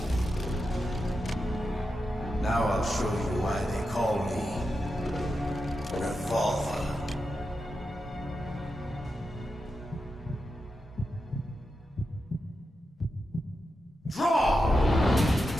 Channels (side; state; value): both; normal; correlation 0.88